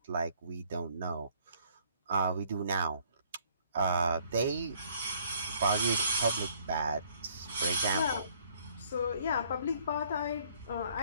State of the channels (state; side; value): inverted; both; correlation -0.62